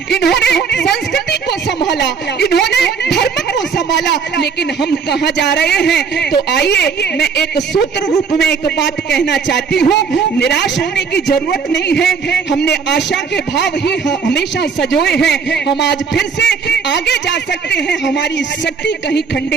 इन्होंने संस्कृति को संभाला, इन्होंने धर्म को संभाला। लेकिन हम कहाँ जा रहे हैं? तो आइए मैं एक सूत्र रूप में एक बात कहना चाहती हूँ। निराश होने की जरूरत नहीं है, हमने आशा के भाव ही हमेशा सजोए हैं। हम आज फिर से आगे जा सकते हैं, हमारी शक्ति कहीं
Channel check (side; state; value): left; quieter; 5.8 dB